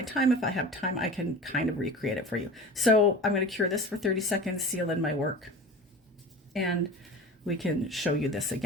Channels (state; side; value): normal; both; correlation 0.35